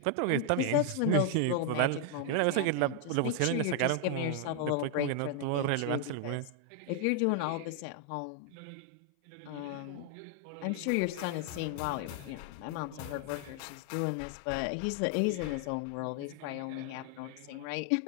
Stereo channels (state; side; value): different; both; correlation 0.00